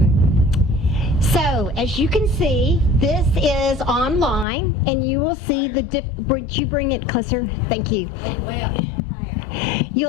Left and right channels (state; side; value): drops out; right; at 4.5 s